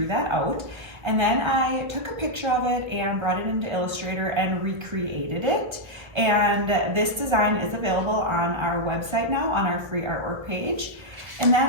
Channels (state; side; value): late; left; 1.6 ms